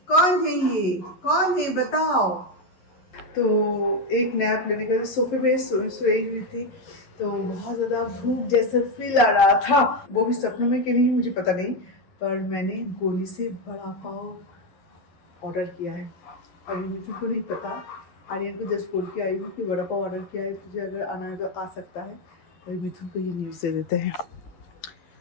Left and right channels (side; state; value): right; late; 11 ms